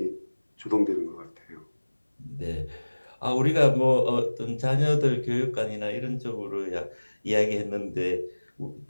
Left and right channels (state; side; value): inverted; both; correlation -1.00